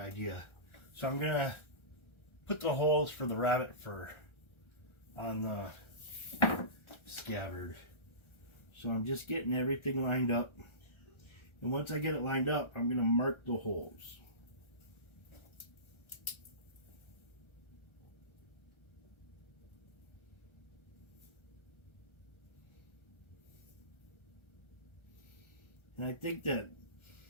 So I'm going to put the holes for the rabbit fur on the scabbard. So I'm just getting everything lined up. And once I get it lined up, I'm going to mark the holes. And I think that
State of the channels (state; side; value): late; right; 1.3 ms